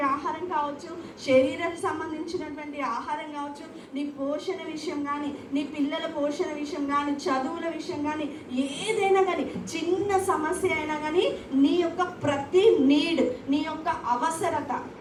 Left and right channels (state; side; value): identical; both; correlation 1.00